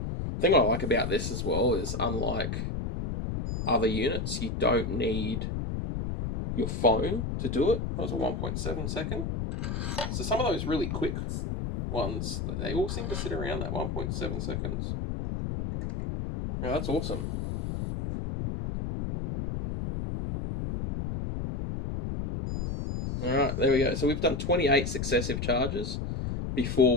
The thing I like about this as well is, unlike other units, you don't need your phone to do it. That was a 1.7 second. So some of those really quick ones, they all seem to sit around that 1.7 seconds. Yeah, that's awesome. All right, there we go. So we've done 28 successive charges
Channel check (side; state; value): left; noise; rumble, 3 dB below the sound